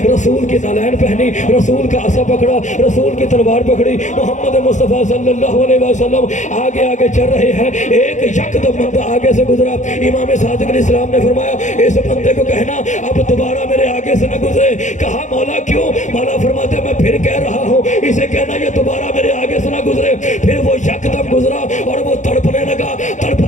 رسول کی نالین پہنی، رسول کا عصا پکڑا، رسول کی تلوار پکڑی، محمد مصطفیٰ صلی اللہ علیہ وسلم آگے آگے چل رہے ہیں۔ ایک یکدم بندہ آگے سے گزرا، امام صادق علیہ السلام نے فرمایا اس بندے کو کہنا اب دوبارہ میرے آگے سے نہ گزرے۔ کہا مولا کیوں؟ مولا فرماتے میں پھر کہہ رہا ہوں اسے کہنا یہ دوبارہ میرے آگے سے نہ گزرے۔ پھر وہ یکدم گزرا اور وہ تڑپنے لگا،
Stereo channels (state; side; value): late; right; 0.35 ms